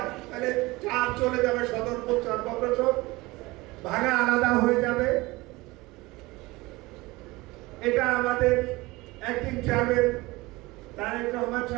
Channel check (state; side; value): quieter; left; 21.5 dB